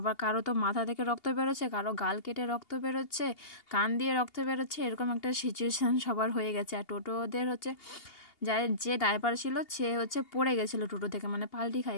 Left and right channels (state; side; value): late; right; 2.8 ms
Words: কারো তো মাথা থেকে রক্ত বেরোচ্ছে, কারো গাল কেটে রক্ত বেরোচ্ছে, কান দিয়ে রক্ত বেরোচ্ছে, এরকম একটা সিচুয়েশান সবার হয়ে গেছে। আর টোটোদের যে ড্রাইভার ছিল সে পড়ে গেছিলো টোটো থেকে, পাল্টি